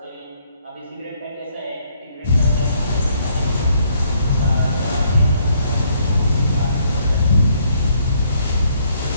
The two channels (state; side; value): inverted; both; correlation -0.68